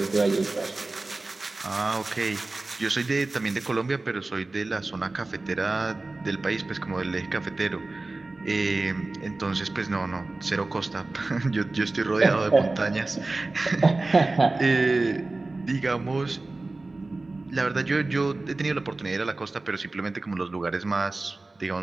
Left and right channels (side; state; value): left; quieter; 3.2 dB